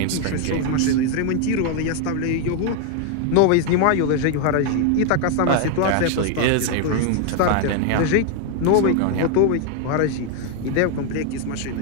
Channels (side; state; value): both; different; correlation 0.01